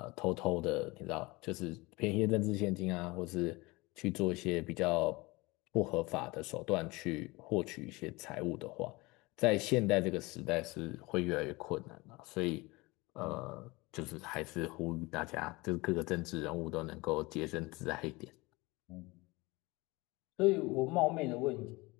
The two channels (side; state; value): right; quieter; 23.2 dB